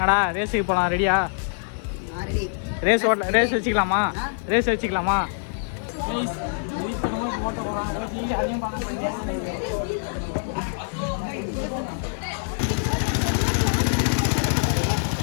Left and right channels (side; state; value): right; silent; digital silence